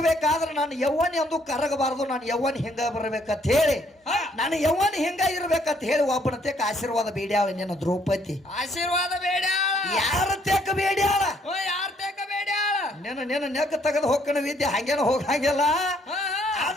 ನಾನು ಯವ್ವನಿ ಅಂದು ಕರಗಬಾರದು ನಾನು ಯವ್ವನಿ ಹಿಂಗ ಬರ್ಬೇಕಂತ ಹೇಳಿ ನಾನು ಯವ್ವನಿ ಹಿಂಗ ಇರ್ಬೇಕಂತ ಹೇಳಿ ಒಬ್ಬನ ತೇಕ ಆಶೀರ್ವಾದ ಬೇಡ್ಯಾಳ ನಿನ್ನ ದ್ರೌಪದಿ ಆಶೀರ್ವಾದ ಬೇಡ್ಯಾಳ ಯಾರ ತೇಕ ಬೇಡ್ಯಾಳ ಯಾರ ತೇಕ ಬೇಡ್ಯಾಳ ನಿನ್ನ ನೆಕ್ಕ ತೆಗೆದು ಹೋಗ್ಕಣ ವಿದ್ಯೆ ಹಂಗೇನ ಹೋಗಂಗಿಲ್ಲ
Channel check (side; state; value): both; normal; correlation 0.67